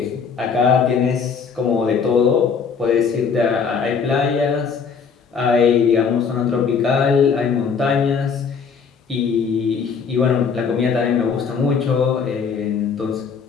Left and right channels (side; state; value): right; quieter; 6.0 dB